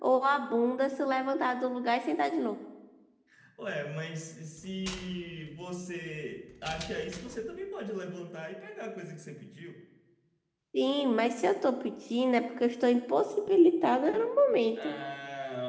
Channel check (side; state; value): both; identical; correlation 1.00